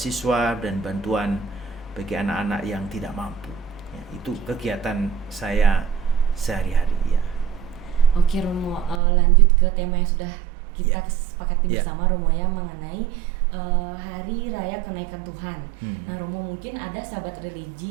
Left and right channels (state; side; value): drops out; left; at 9.0 s